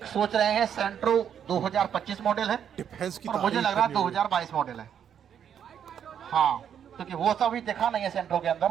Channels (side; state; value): left; quieter; 8.6 dB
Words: सोच रहे हैं सेंट्रो 2025 मॉडल है डिफेंस की और मुझे तारीफ लग रहा है करनी होगी। 2022 मॉडल है। हाँ, क्योंकि वो सब भी देखा नहीं है सेंट्रो के अंदर।